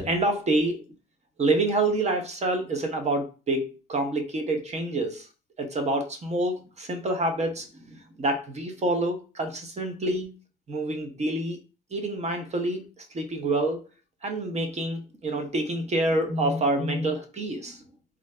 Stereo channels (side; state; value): both; normal; correlation 0.38